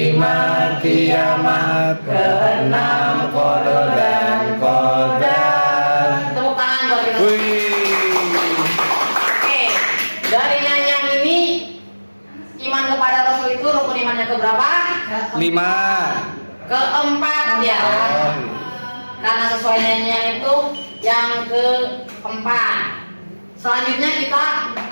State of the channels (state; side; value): inverted; both; correlation -1.00